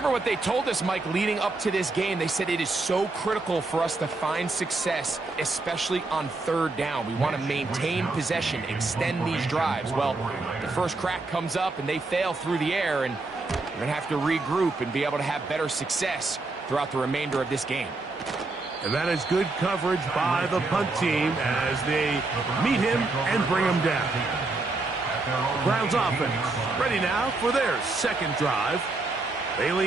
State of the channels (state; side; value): quieter; left; 3.3 dB